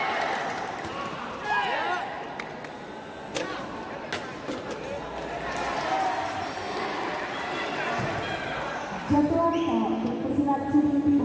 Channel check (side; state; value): both; identical; correlation 1.00